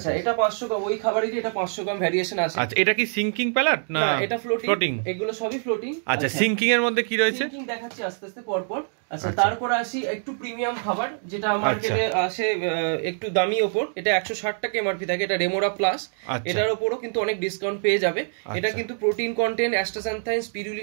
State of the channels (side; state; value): left; silent; 59 dB below the other